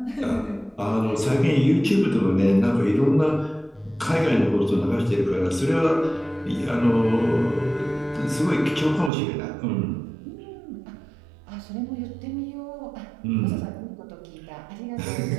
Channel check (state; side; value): drops out; left; at 9.1 s